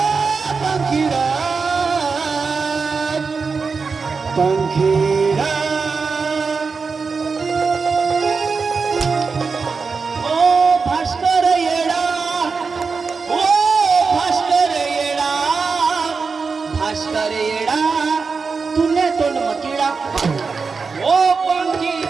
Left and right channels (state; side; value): quieter; left; 4.9 dB